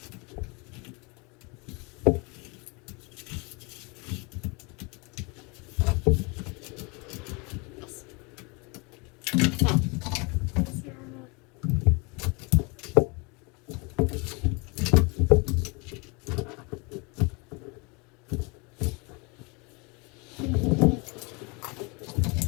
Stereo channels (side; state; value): right; quieter; 29.5 dB